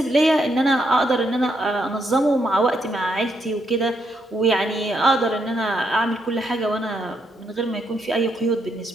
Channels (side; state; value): both; normal; correlation 0.77